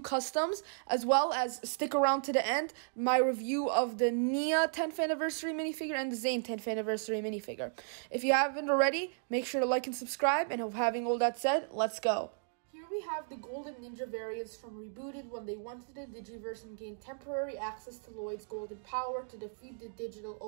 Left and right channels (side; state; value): left; silent; digital silence